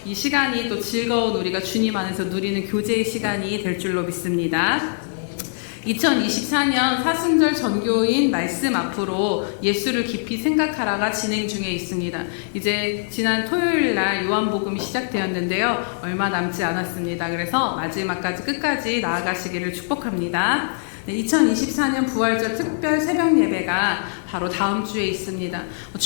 이 시간이 또 즐거운 우리가 주님 안에서 누리는 교제의 시간이 될 줄로 믿습니다. 2024년 사순절 전교인 말씀 앞으로 예수를 깊이 생각하라가 진행 중에 있습니다. 이제 지난 토요일 날 요한복음이 시작되었는데요. 얼마 남지 않았습니다. 그래서 마지막까지 끝까지 나아가시기를 축복합니다. 네, 2024년 부활절 특별 새벽 예배가 바로 다음 주에 있습니다.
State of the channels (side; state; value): right; silent; digital silence